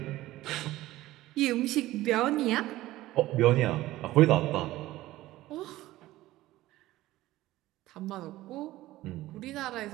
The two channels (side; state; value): left; quieter; 16.5 dB